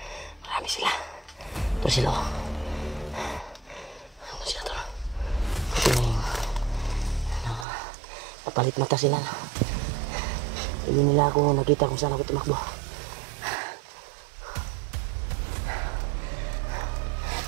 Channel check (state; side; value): drops out; left; at 7.7 s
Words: Marami sila. Ito sila. Ito sila to. Ito na yung napalit mata sila. Hindi nila ako nakita kung saan ako tumakbo.